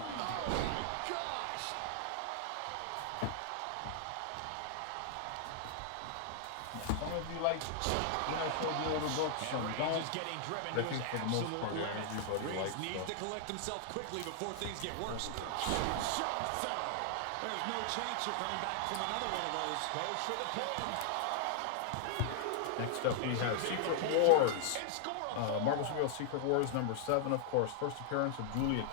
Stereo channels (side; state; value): both; different; correlation -0.01